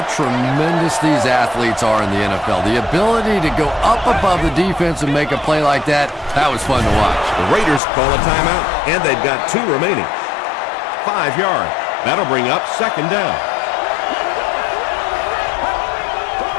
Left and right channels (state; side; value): drops out; right; at 7.8 s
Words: tremendous these athletes are in the NFL. The ability to go up above the defense and make a play like that, that was fun to watch. The Raiders call a timeout, and they've got 2 remaining. 5 yards. That'll bring up 2nd down.